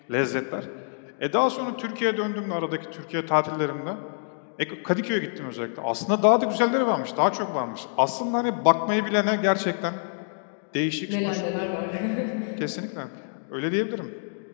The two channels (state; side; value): silent; right; digital silence